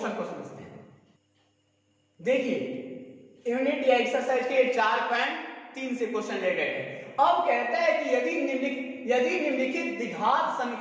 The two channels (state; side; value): identical; both; correlation 1.00